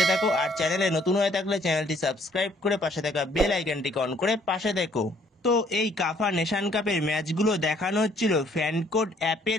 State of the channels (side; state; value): both; normal; correlation 0.63